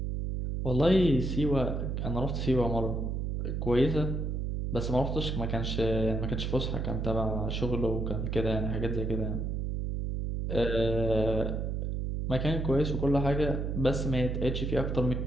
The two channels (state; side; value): noise; right; hum, 1 dB below the sound